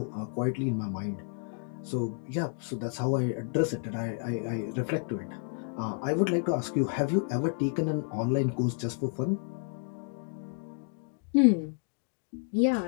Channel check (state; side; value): silent; right; 57 dB below the other